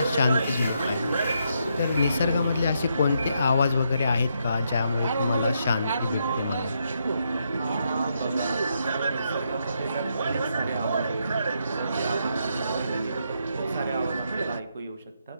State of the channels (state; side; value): inverted; both; correlation -0.79